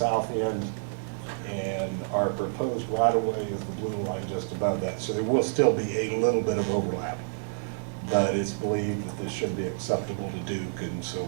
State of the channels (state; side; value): silent; left; digital silence